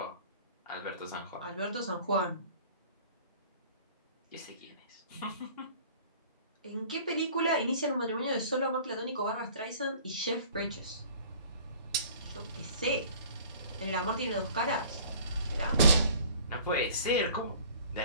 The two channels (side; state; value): both; inverted; correlation -0.49